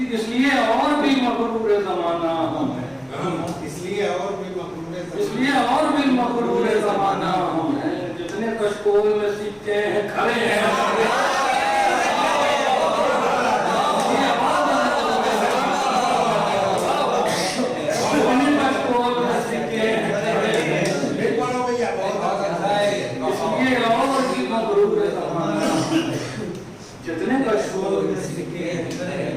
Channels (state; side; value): identical; both; correlation 1.00